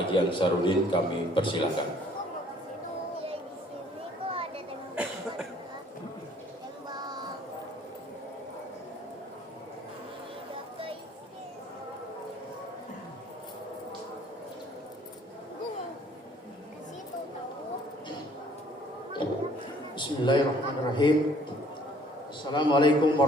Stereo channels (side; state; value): both; normal; correlation 0.58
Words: Ansarudin. Kami persilakan. Bismillahirrahmanirrahim. Assalamualaikum